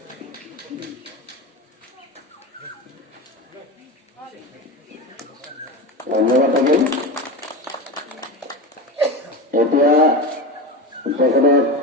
ধন্যবাদ থাকিল। এতিয়া তেখেতক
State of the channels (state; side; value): normal; both; correlation 0.23